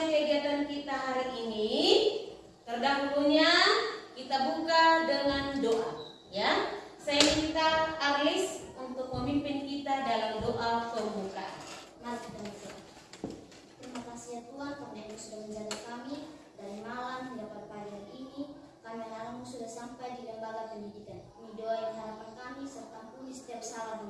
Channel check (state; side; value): identical; both; correlation 1.00